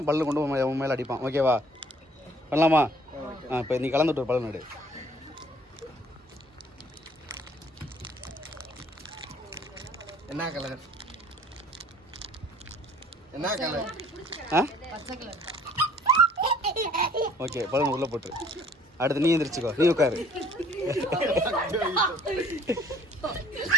பல்லு கொண்டு உன் மேலே அடிப்பான். ஓகேவா? பண்ணலாமா? இப்போ நீ கலந்து விட்டு பல்லு நடு. என்ன கலர்? என்ன கலர்? ஓகே, பலூன் உள்ளே போட்டு அடுத்து நீ எந்திரிச்சுக்கோ. நீ உட்காரு.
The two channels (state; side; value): normal; both; correlation 0.56